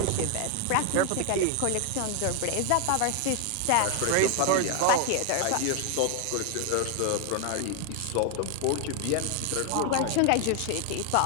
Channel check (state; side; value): different; both; correlation 0.01